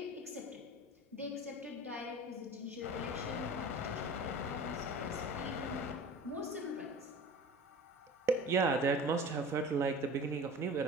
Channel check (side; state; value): both; normal; correlation 0.38